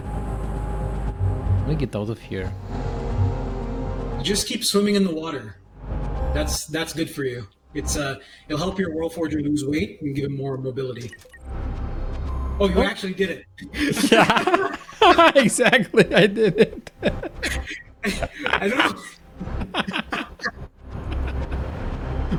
Let me get out of here. Just keep swimming in the water. That's good for you. It'll help your Worldforger lose weight and give him more mobility. Oh, you actually did it. Yeah, exactly. I did it. I don't know.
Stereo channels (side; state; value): both; identical; correlation 1.00